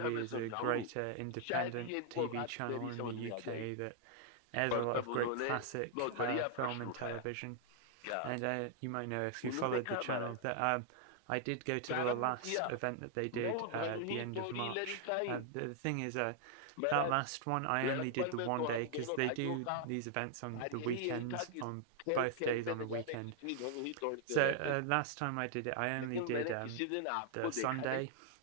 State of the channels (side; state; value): both; different; correlation 0.00